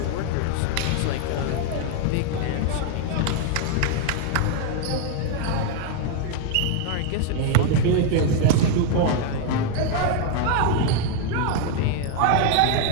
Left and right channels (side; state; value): both; different; correlation 0.00